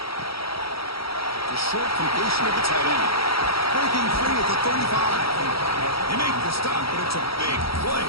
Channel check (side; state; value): right; late; 0.75 ms